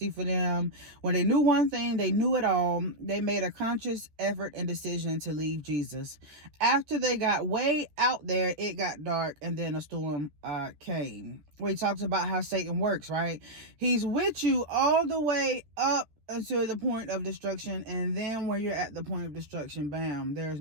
for them. When they knew one thing, they knew it all. They made a conscious effort and decision to leave Jesus. After they got way out there, it got dark, and then a storm came. We talked about how Satan works, right? He's with you all the way up until the point of destruction, and then when you're at the point of destruction, bam, there is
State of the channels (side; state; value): left; late; 13 ms